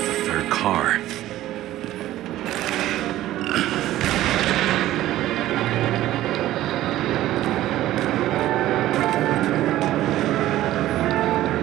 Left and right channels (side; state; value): left; quieter; 14.6 dB